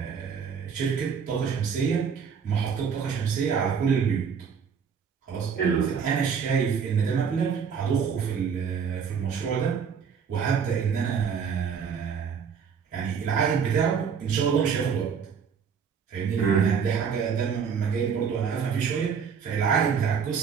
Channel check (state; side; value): quieter; left; 6.7 dB